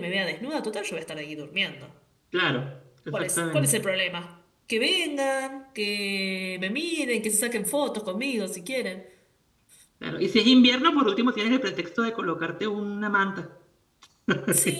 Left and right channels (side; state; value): both; identical; correlation 1.00